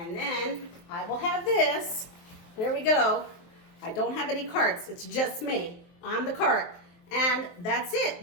then I will have this. There we go. I don't have any carts. It's just me. I'm the cart. And that's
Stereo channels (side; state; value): right; late; 23 ms